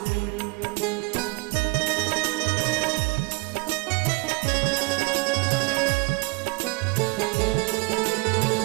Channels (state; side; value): quieter; left; 27.9 dB